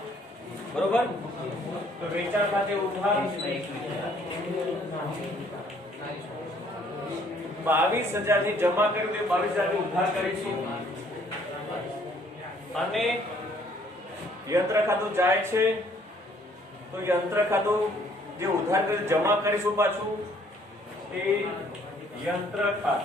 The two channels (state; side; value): normal; both; correlation 0.62